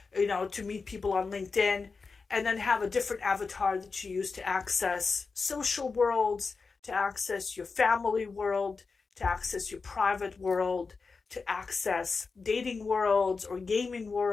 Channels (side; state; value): right; quieter; 4.6 dB